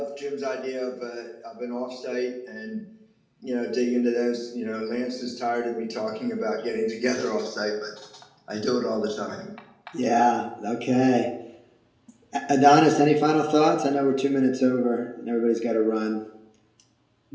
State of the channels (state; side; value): identical; both; correlation 1.00